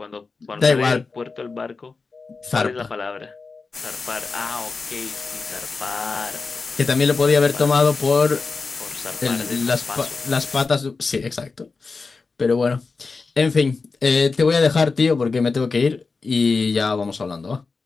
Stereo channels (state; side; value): quieter; right; 4.3 dB